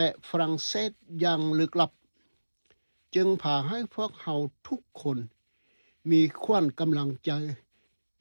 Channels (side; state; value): both; inverted; correlation -1.00